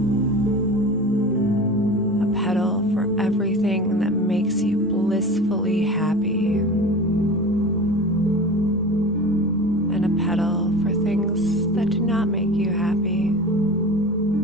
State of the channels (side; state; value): both; normal; correlation 0.34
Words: A petal for everything that makes you blissfully happy. And a petal for things that do not make you happy.